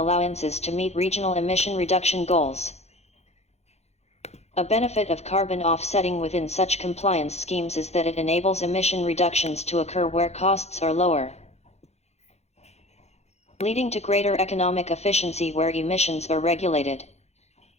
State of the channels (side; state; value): right; late; 0.31 ms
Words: to meet regional emission reduction goals. A benefit of carbon offsetting within such compliance schemes is that it enables emission reductions to occur where costs are lower, leading to greater economic efficiency where emissions are regulated.